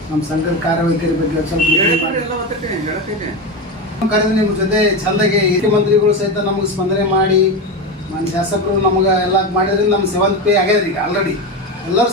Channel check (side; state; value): both; normal; correlation 0.18